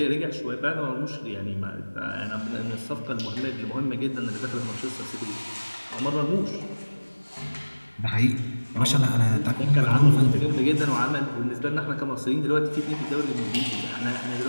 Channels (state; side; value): inverted; both; correlation -1.00